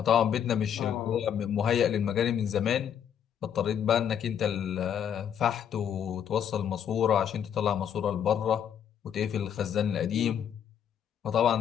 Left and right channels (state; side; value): quieter; right; 8.8 dB